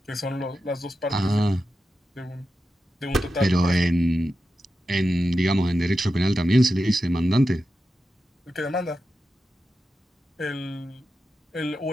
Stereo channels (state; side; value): normal; both; correlation 0.90